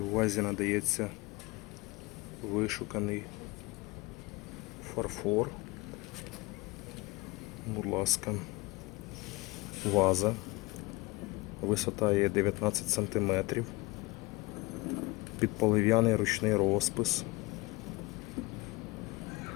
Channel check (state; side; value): quieter; right; 22.8 dB